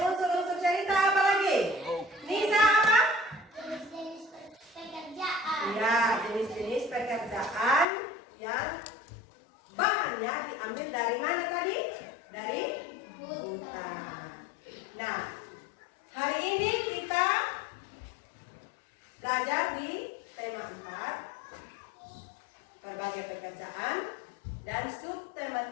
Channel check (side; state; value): right; drops out; at 7.9 s